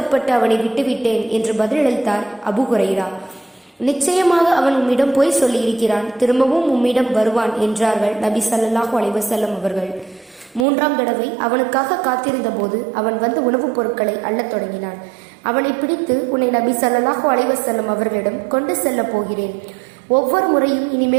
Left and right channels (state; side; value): drops out; left; at 10.7 s